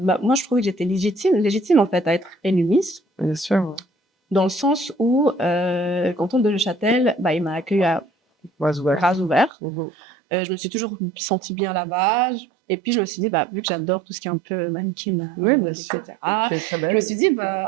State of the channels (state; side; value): drops out; left; at 9.5 s